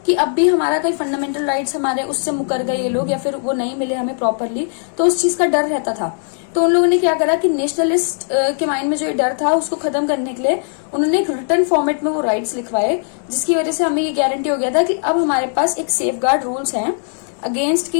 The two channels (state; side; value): silent; right; 67 dB below the other